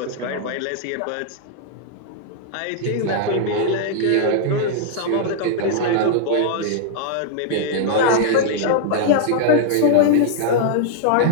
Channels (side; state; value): both; different; correlation -0.01